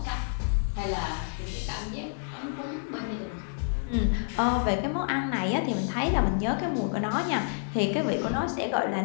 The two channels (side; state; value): right; silent; digital silence